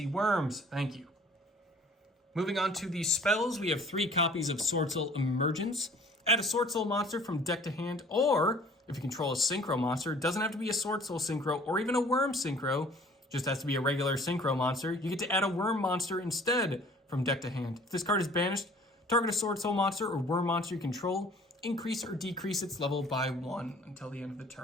worms. Thank you. Moving on to the spells, we have 3 copies of Swordsoul Emergence. Add a Swordsoul monster from deck to hand, or if you control a Synchro monster, it doesn't have to be a Swordsoul Synchro or even a Worm Synchro, just has to be a regular Synchro monster. You get to add a Worm monster instead from deck to hand. If this card is banished, target a Swordsoul monster or Worm monster you control, increase or decrease its level by 1 until the end of the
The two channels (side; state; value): both; normal; correlation 0.52